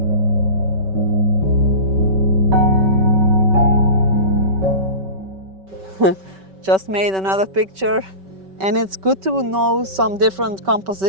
just made another picture. And it's good to know some different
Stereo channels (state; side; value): late; left; 5.2 ms